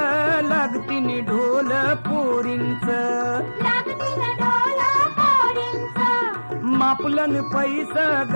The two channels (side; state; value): both; inverted; correlation -1.00